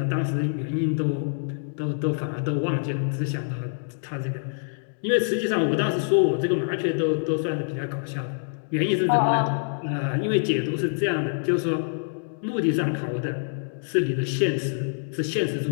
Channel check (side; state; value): right; silent; digital silence